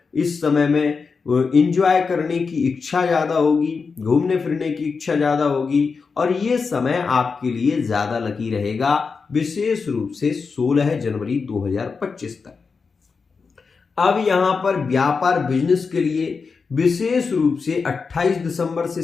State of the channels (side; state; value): right; quieter; 5.0 dB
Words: इस समय में एंजॉय करने की इच्छा ज्यादा होगी, घूमने फिरने की इच्छा ज्यादा होगी। और ये समय आपके लिए ज्यादा लकी रहेगा विशेष रूप से 16 जनवरी 2025 तक। अब यहां पर व्यापार बिजनेस के लिए विशेष रूप से 28 दिसंबर से